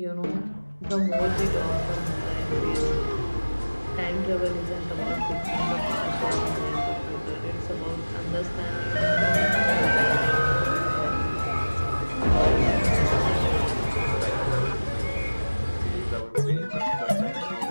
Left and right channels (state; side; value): inverted; both; correlation -1.00